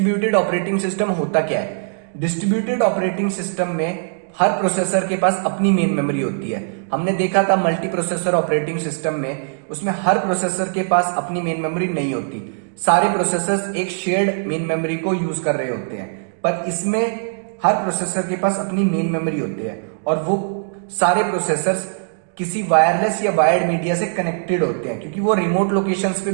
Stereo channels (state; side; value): silent; left; digital silence